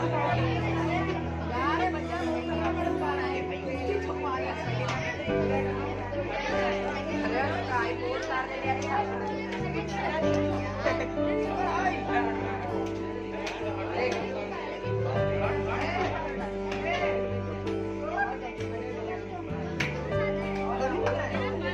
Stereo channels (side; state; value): both; identical; correlation 1.00